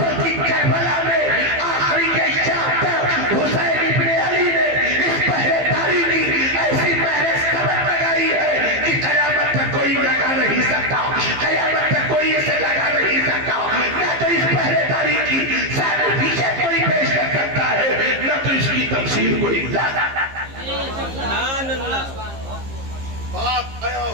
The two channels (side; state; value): left; late; 15 ms